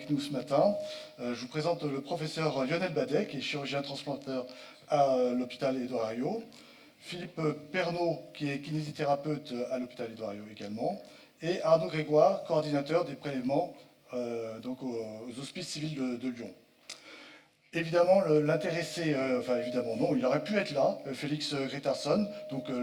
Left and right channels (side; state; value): both; identical; correlation 1.00